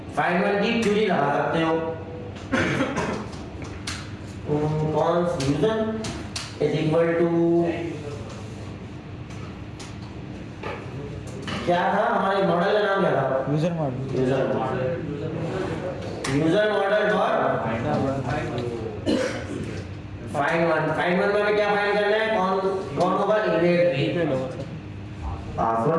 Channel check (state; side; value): identical; both; correlation 1.00